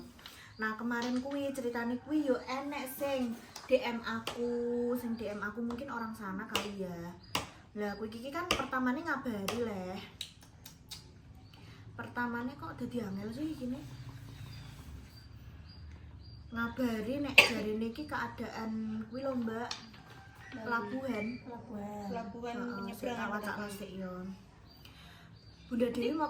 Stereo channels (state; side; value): identical; both; correlation 1.00